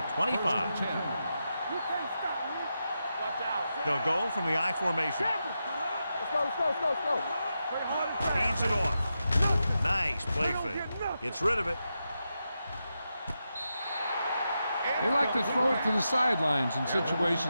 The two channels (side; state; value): both; inverted; correlation -0.88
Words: 25. You can't stop me. Watch out. They'll go from the I formation. Let's go. Hands it off. Nice play fake. Gets rid of it. They like to throw it to the sidelines in